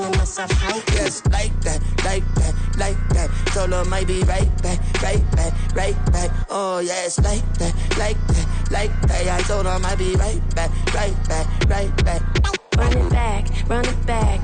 myself high-key. Yes, like that, like that, like that. Solo might be right back, right back, right back. Oh yes, like that, like that, like that. I told her I might be right back, right back, right back. Run it back, run it back.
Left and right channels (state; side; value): identical; both; correlation 1.00